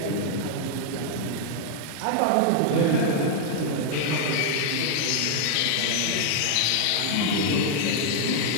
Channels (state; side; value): different; both; correlation 0.00